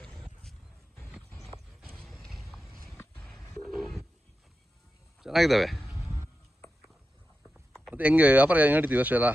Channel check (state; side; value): normal; both; correlation 0.91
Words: ಚೆನ್ನಾಗಿದ್ದಾವೆ. ಮತ್ತೆ ಹೆಂಗೆ ವ್ಯಾಪಾರ ಹೆಂಗೆ ನಡೀತೀವಿ ವರ್ಷ ಎಲ್ಲ?